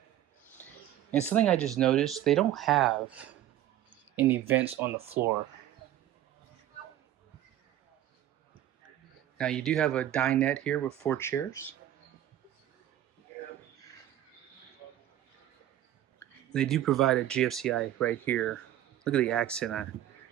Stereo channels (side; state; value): left; quieter; 12.5 dB